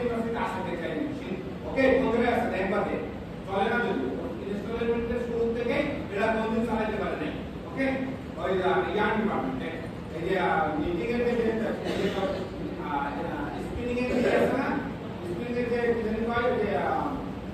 ইউনিভার্সিটিতে আসে টেক্সচারাইজিং মেশিন। ওকে বন্ধুরা আছে একবার দে চলে না যদি ইনস্টলমেন্টের শুরু থেকে এরা কোনদিন চালাতে পারে না। ওকে ওই ইয়ার ডিপার্টমেন্টে এই যে মিটিং এর যে স্পিনিং এর যে আছে না স্পিনিং এর যে জানি পাই যে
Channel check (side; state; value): both; identical; correlation 1.00